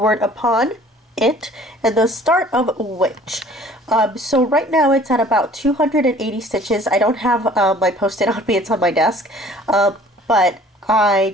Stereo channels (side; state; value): both; normal; correlation 0.52